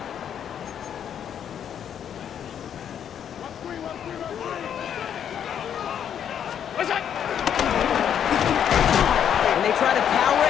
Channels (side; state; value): right; quieter; 8.9 dB